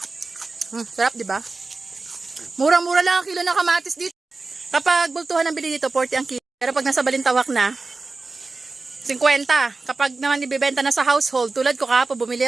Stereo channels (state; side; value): quieter; left; 3.7 dB